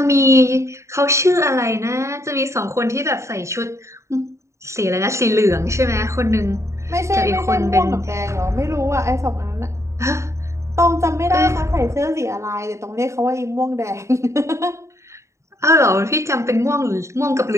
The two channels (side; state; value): left; late; 0.14 ms